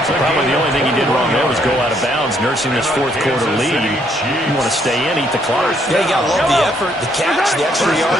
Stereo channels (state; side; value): normal; both; correlation 0.70